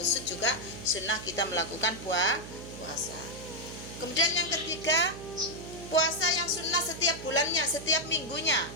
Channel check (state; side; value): noise; right; hum, 12 dB below the sound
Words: juga sunnah kita melakukan puasa. Kemudian yang ketiga, puasa yang sunnah setiap bulannya, setiap minggunya,